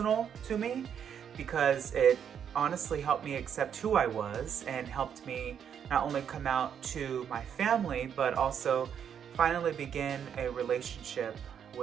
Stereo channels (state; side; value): quieter; left; 8.3 dB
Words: to me because it honestly helped me accept who I was and helped me not only come out to my family, but also finally begin a relationship